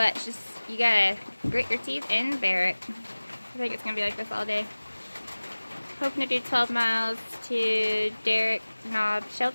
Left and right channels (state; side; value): inverted; both; correlation -1.00